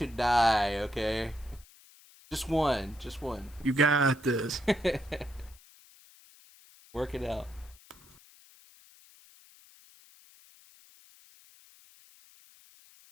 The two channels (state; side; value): noise; left; hiss, 25 dB below the sound